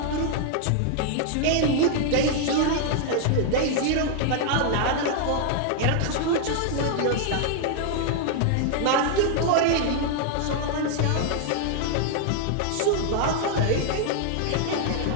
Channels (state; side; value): different; both; correlation 0.00